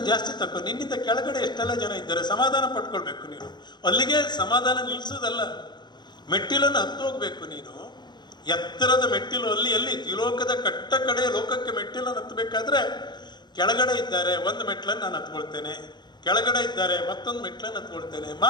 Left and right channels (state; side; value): late; right; 0.21 ms